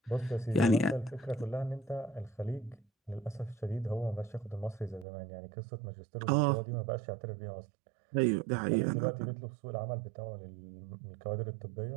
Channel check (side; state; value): left; drops out; at 5.1 s